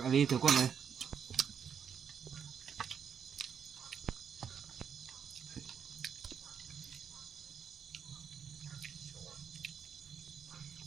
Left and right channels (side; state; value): left; quieter; 7.5 dB